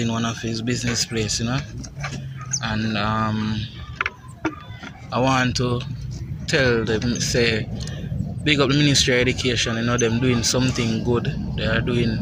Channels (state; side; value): identical; both; correlation 1.00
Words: one of his business place, and I want to tell them, say, big up the Ministry of Education, them doing something good. They are doing